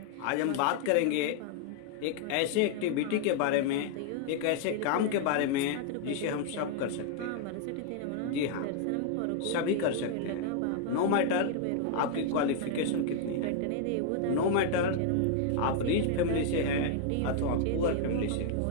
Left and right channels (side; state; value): both; different; correlation 0.00